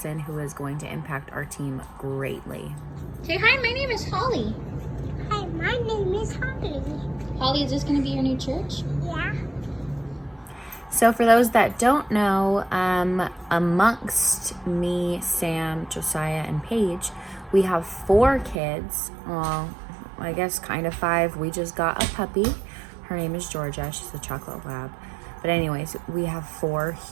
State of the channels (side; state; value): left; drops out; at 18.6 s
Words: who is going to impact our team greatly. Say hi, my name is Holly. Hi, my name is Holly. Holly, is this going to be your new church? Yeah. So for those that don't know, amongst me, Sam, Josiah, and Paige, we have 4 kids. Well, I guess kind of 5. We just got a puppy. Her name is Georgia. She's a chocolate lab. But anyways, we have 4